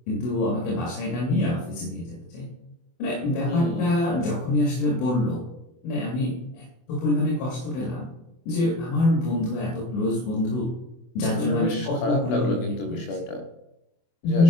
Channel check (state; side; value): late; right; 24 ms